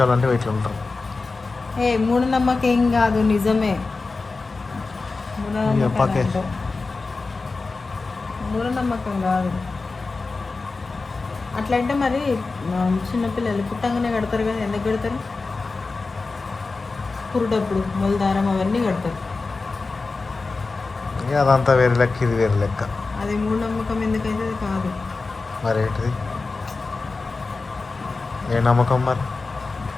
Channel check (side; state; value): right; quieter; 3.9 dB